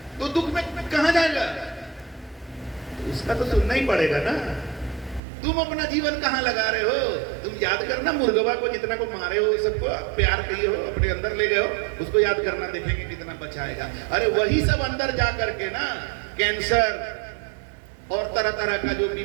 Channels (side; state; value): left; drops out; at 5.2 s